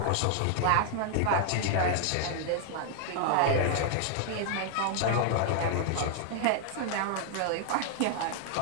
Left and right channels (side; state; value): both; different; correlation 0.00